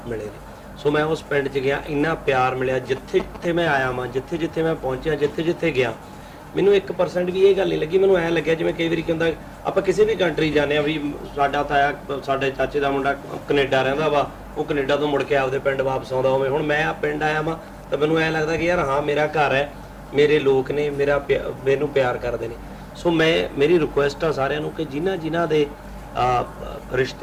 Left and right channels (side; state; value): both; identical; correlation 1.00